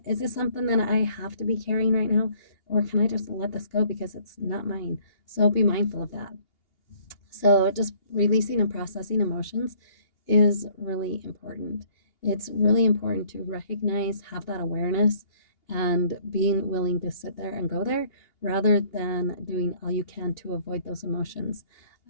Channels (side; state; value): right; late; 2.8 ms